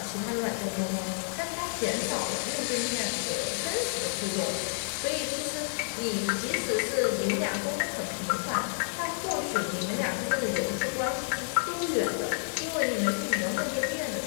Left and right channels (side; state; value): right; silent; digital silence